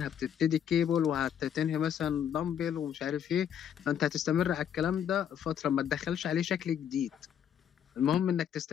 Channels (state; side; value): quieter; right; 9.1 dB